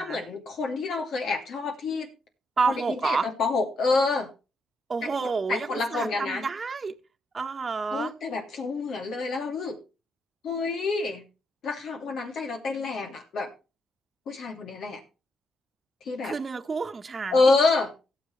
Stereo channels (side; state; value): both; normal; correlation 0.79